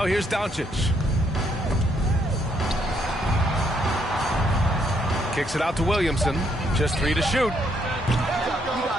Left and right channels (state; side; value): normal; both; correlation 0.72